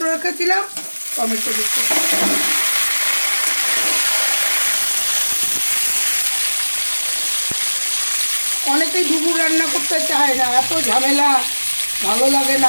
রেখেছিলাম, টমেটো দিচ্ছি। অনেকেই ডুমুর রান্না করতে চায় না, এত ঝামেলা, ভালো লাগে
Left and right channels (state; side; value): inverted; both; correlation -1.00